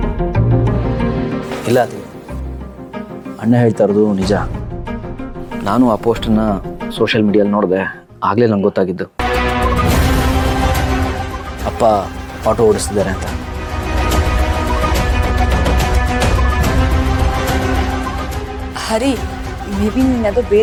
ಇಲ್ಲ ಅದು ಅಣ್ಣ ಹೇಳ್ತಾ ಇರೋದು ನಿಜ. ನಾನು ಆ ಪೋಸ್ಟನ್ನು ಸೋಷಿಯಲ್ ಮೀಡಿಯಲ್ಲಿ ನೋಡಿದೆ, ಆಗಲೇ ನಂಗೆ ಗೊತ್ತಾಗಿದ್ದು ಅಪ್ಪ ಆಟೋ ಓಡಿಸ್ತಿದ್ದಾರೆ ಅಂತ. ಹರಿ, ಮೇ ಬಿ ನೀನು ಅದು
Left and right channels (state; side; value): identical; both; correlation 1.00